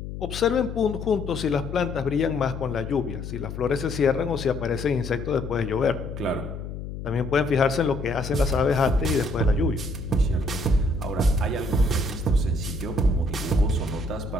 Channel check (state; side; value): noise; left; hum, 8 dB below the sound